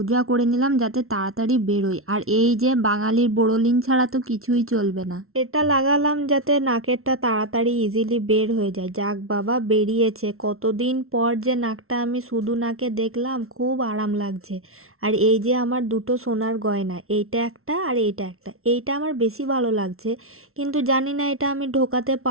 করে নিলাম যাতে তাড়াতাড়ি বেরোয়। আর এই যে বাঙালির বোরোলিন ছাড়া তো কিছুই চলবে না। এটা লাগালাম যাতে নাকেরটা তাড়াতাড়ি ইজিলি বের হয়ে যায়। যাক বাবা, বেরিয়েছে। কতদিন পর যে নাকটা আমি শুধু নাকে দেখলাম, খুব আরাম লাগছে। আর এই যে আমার দুটো সোনার গয়না, এইটা একটা আর এইটা একটা, এইটা আমার বেশি ভালো লাগছে। কিন্তু জানি না এটা আমি ঢোকাতে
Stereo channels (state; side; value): late; left; 0.62 ms